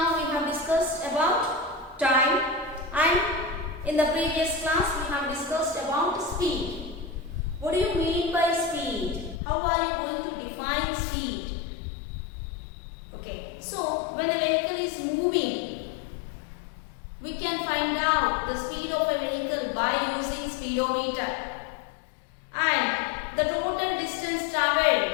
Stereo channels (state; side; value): drops out; right; at 9.4 s